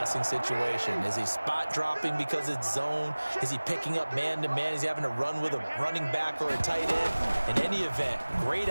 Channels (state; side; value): inverted; both; correlation -1.00